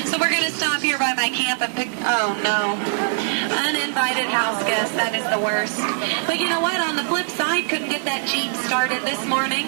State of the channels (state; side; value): silent; left; digital silence